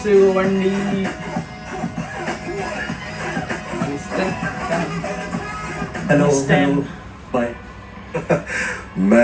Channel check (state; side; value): identical; both; correlation 1.00